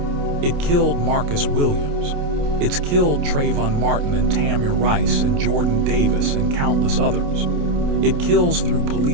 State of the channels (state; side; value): late; left; 28 ms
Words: It killed Marcus Williams. It's killed Trayvon Martin and Tamir Rice and Jordan Davis and countless others. It kills through